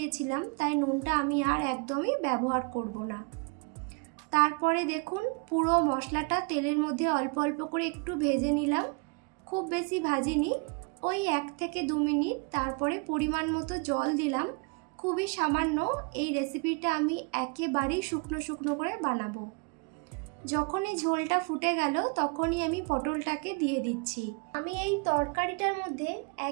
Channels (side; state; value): left; quieter; 34.5 dB